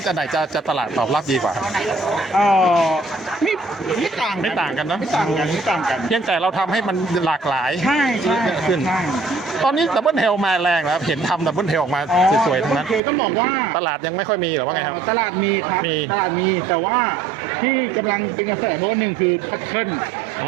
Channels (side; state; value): left; drops out; at 13.0 s